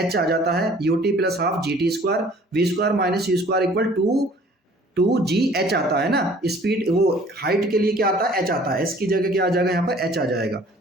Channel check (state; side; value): normal; both; correlation 0.53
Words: h आ जाता है, ut plus half g t square, v square minus you square equal to g h आता है ना। स्पीड वो हाइट के लिए क्या आता है, h आता है। s की जगह क्या आ जाएगा, यहाँ पर h आ जाएगा।